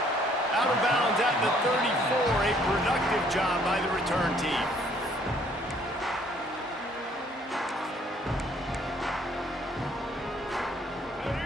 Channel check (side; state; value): both; normal; correlation 0.62